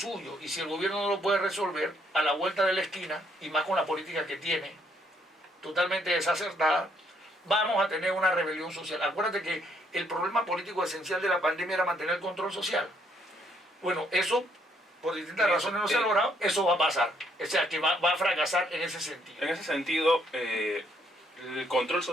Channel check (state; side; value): normal; both; correlation 0.70